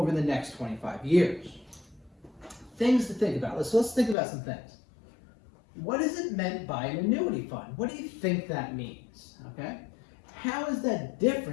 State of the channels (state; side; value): drops out; right; at 4.2 s